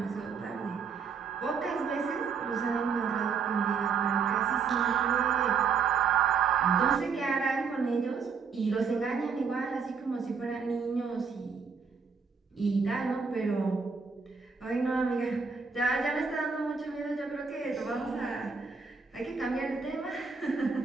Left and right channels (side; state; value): left; quieter; 5.6 dB